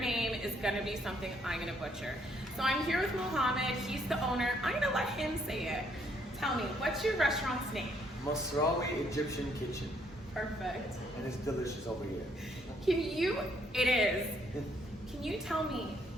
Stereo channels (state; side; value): normal; both; correlation 0.69